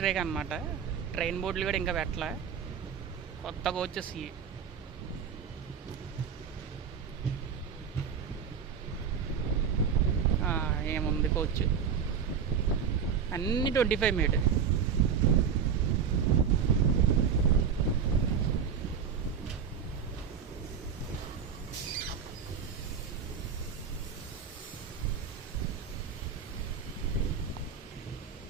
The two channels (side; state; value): left; quieter; 7.1 dB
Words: రేక్ అనమాట. ట్రైన్ బోర్డులు కూడా ఇంకా పెట్టలే, కొత్త కోచెస్. ఏముంది కోచ్, అన్నీ 25 మీట్.